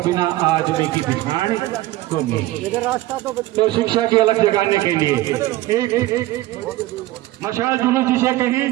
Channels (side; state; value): left; quieter; 16.9 dB